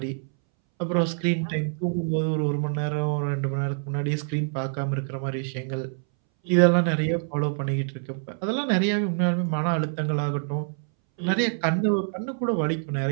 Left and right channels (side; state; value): left; silent; 61 dB below the other